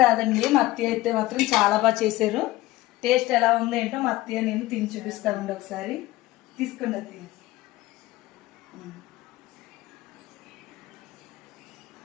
రాదండి. మా అత్తయ్య అయితే మాత్రం చాలా బాగా చేశారు. టేస్ట్ ఎలా ఉందో ఏంటో మా అత్తయ్య నేను తిని చూపిస్తానండి. ఒకసారి తీసుకోండి అత్తయ్య.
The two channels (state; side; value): quieter; right; 17.6 dB